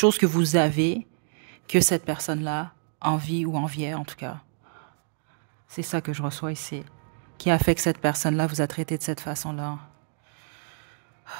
que vous avez que cette personne-là envie ou enviait, en tout cas. C'est ça que je reçois ici. Qui a fait que cette personne-là vous a traité de cette façon-là.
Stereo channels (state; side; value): silent; left; digital silence